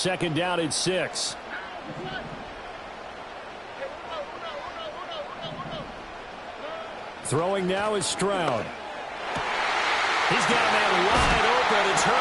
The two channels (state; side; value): identical; both; correlation 1.00